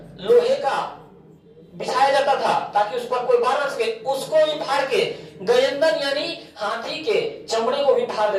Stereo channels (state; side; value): identical; both; correlation 1.00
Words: लोहे का बिछाया जाता था ताकि उस पर कोई वार न सके, उसको भी फाड़ के गयंदन यानी हाथी के चमड़े को भी फाड़